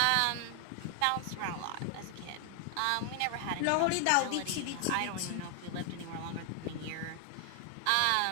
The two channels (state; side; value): different; both; correlation 0.00